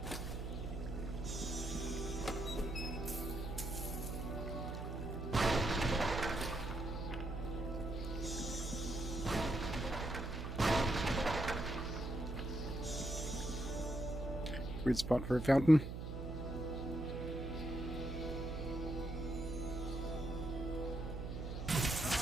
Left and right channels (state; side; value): noise; right; hum, 6 dB below the sound